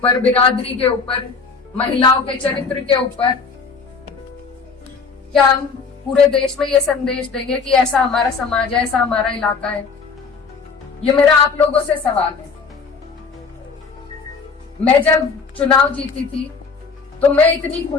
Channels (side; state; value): right; quieter; 5.0 dB